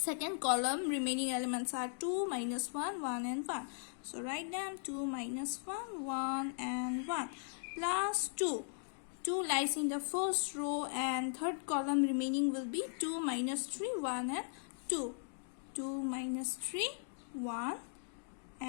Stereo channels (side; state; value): right; silent; digital silence